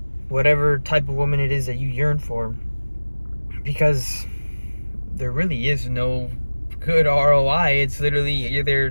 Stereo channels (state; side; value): inverted; both; correlation -1.00